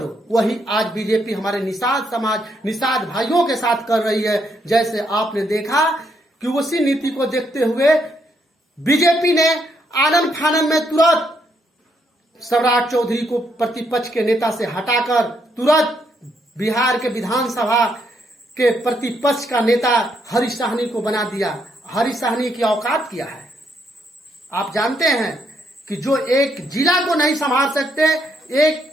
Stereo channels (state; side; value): normal; both; correlation 0.75